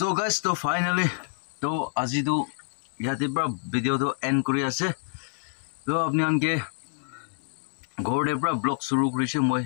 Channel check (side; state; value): right; silent; digital silence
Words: guys, to finally to আজি to ইয়াতে পৰা video to end কৰি আছে তো আপনি আনকে ঘৰতে পৰা blog শুৰু কৰিছে মই